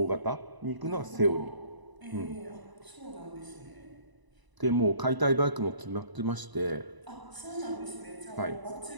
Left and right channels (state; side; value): late; left; 1.0 ms